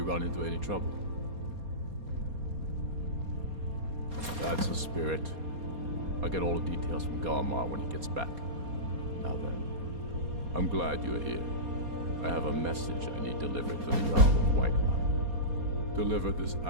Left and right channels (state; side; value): late; left; 4.2 ms